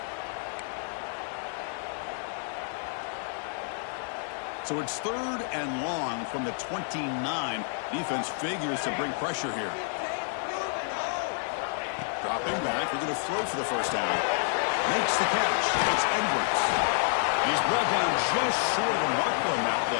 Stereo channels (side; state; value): right; silent; 58 dB below the other